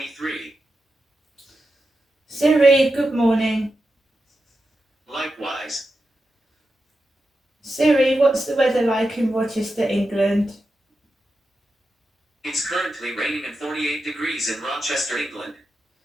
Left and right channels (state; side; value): normal; both; correlation 0.89